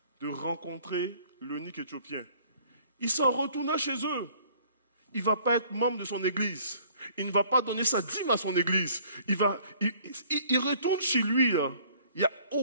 de rencontrer l'eunuque éthiopien. Il s'en retourna chez eux. Il ne va pas être membre de son église. Il ne va pas donner sa dîme à son église. Il retourne chez lui. Là. Il n'y a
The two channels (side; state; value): both; inverted; correlation -0.56